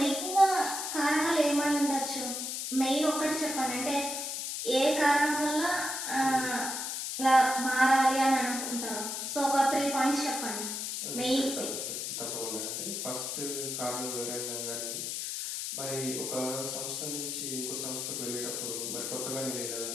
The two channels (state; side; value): noise; left; hiss, 3 dB below the sound